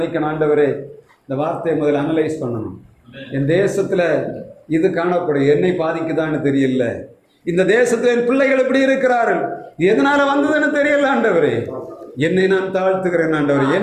ஆண்டவரே இந்த வார்த்தையை முதல்ல அனலைஸ் பண்ணணும். என் தேசத்தில் இது காணப்படும், என்னை பாதிக்குதான்னு தெரியல. இந்த தேசத்தில் என் பிள்ளைகள் எப்படி இருக்கிறார்கள், எதனால வந்ததுன்னு தெரியல. ஆண்டவரே என்னை நான் தாழ்த்துகிறேன். ஆண்டவரே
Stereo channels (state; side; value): identical; both; correlation 1.00